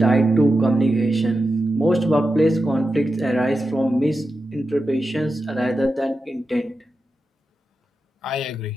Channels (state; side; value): normal; both; correlation 0.90